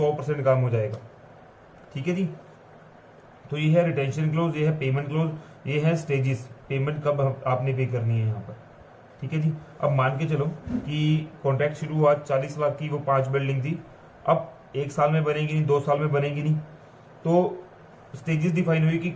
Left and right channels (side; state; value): both; identical; correlation 1.00